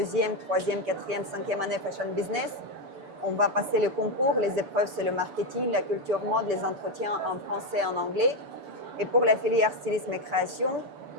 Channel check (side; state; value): left; late; 6.9 ms